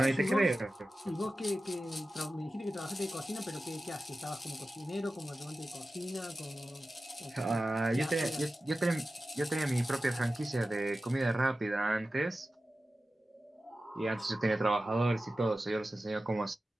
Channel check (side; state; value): both; normal; correlation 0.94